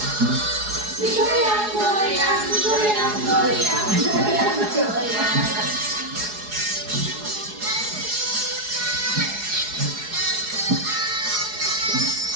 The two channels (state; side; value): late; left; 4.8 ms